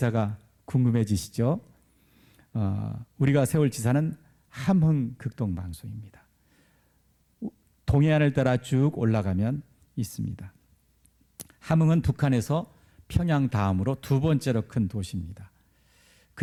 궁금해지시죠? 우리가 세울 지사는 함흥 극동방송입니다. 동해안을 따라 쭉 올라가면 있습니다. 함흥은 북한에서 평양 다음으로 2번째로 큰 도시입니다.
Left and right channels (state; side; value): identical; both; correlation 1.00